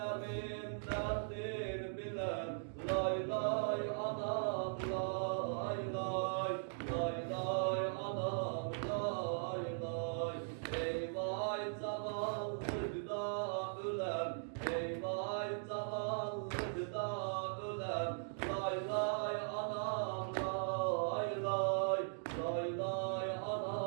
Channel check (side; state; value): left; silent; digital silence